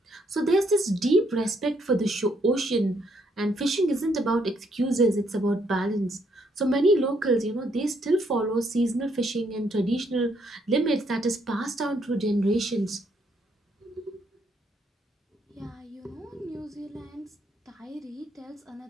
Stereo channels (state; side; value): normal; both; correlation 0.72